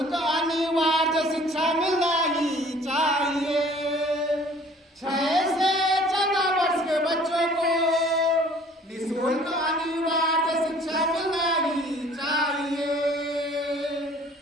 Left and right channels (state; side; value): normal; both; correlation 0.53